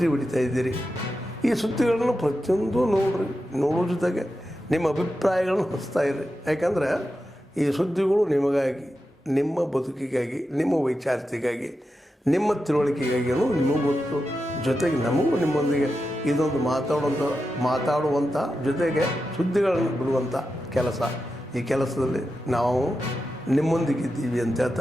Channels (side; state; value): both; normal; correlation 0.90